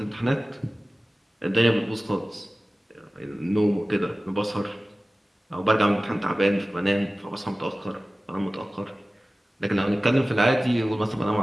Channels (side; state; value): both; normal; correlation 0.97